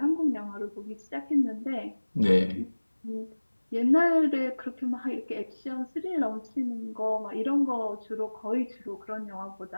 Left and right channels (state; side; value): inverted; both; correlation -1.00